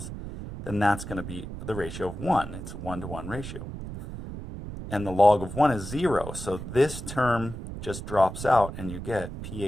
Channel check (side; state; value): right; noise; rumble, 9 dB below the sound